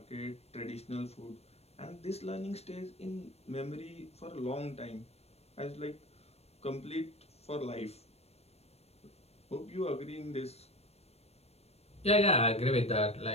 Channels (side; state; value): right; late; 0.30 ms